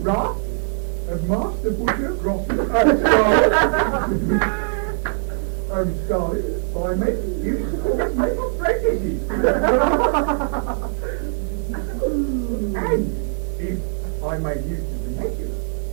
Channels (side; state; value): left; silent; 60 dB below the other